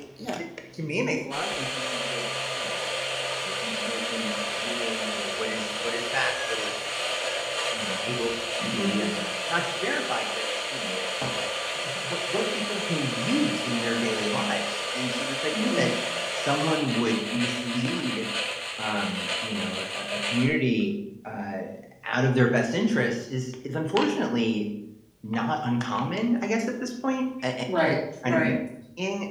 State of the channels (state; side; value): identical; both; correlation 1.00